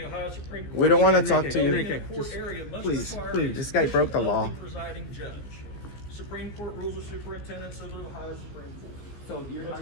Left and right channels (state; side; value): late; right; 15 ms